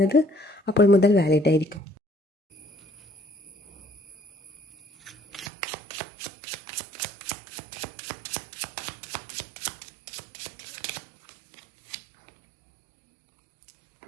അപ്പോൾ മുതൽ വാലിഡ് ആയിരിക്കും.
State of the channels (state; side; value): drops out; left; at 5.5 s